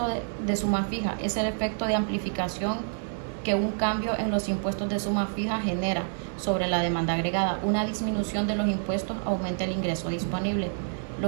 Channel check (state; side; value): silent; left; 59 dB below the other